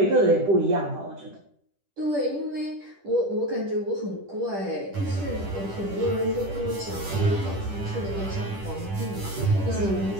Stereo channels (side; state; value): left; late; 10 ms